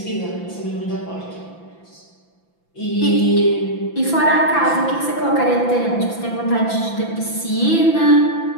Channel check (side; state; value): right; late; 5.9 ms